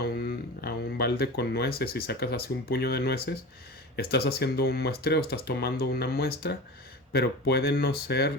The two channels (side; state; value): both; normal; correlation 0.31